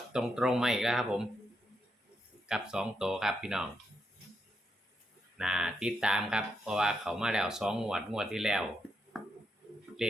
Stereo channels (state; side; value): normal; both; correlation 0.82